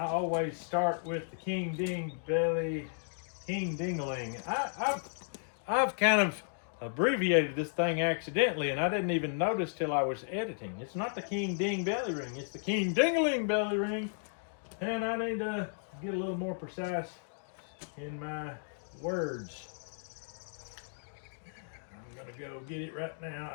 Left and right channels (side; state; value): right; silent; digital silence